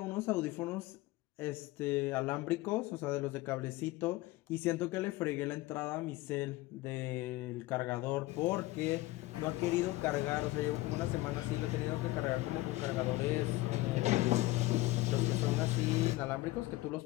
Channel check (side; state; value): right; quieter; 18.9 dB